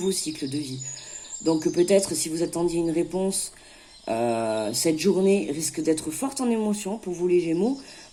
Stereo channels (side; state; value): both; identical; correlation 1.00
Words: cycle de vie. Donc peut-être si vous attendiez une réponse, cette journée risque d'être forte en émotion pour vous les Gémeaux.